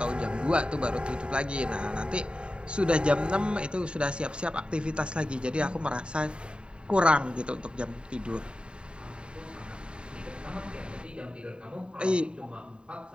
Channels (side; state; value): left; late; 0.052 ms